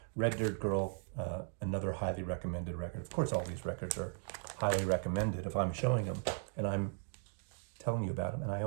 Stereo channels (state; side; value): silent; left; digital silence